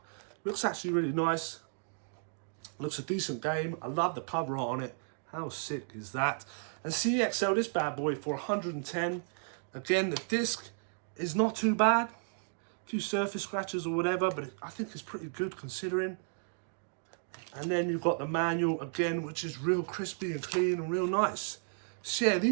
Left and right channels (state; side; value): silent; left; 55 dB below the other